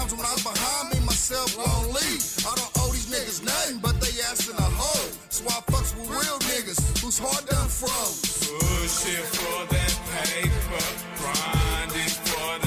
when I was behind me, myself won't leave. I don't owe these niggas nothing, but they asking a hoe. So I fucks with real niggas, whose heart done froze. Pushing for that paper, grinding for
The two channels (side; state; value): both; identical; correlation 1.00